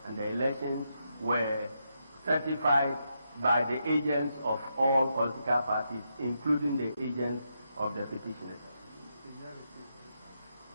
and the elections were certified by the agents of all political parties, including the agents of the petitioners.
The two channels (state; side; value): inverted; both; correlation -0.82